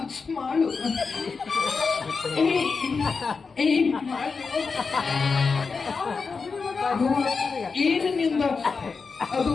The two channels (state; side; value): quieter; right; 4.8 dB